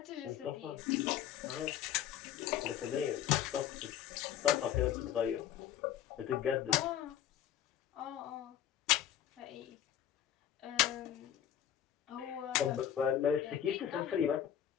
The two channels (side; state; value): right; quieter; 10.5 dB